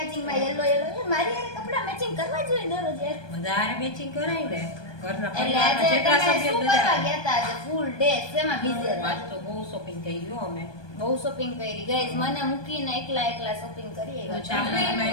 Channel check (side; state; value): right; late; 1.2 ms